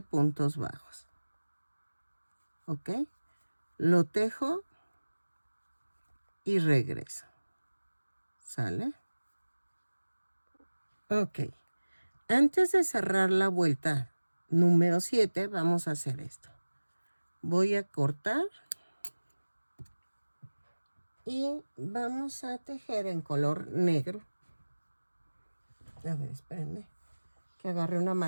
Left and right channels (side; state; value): both; inverted; correlation -1.00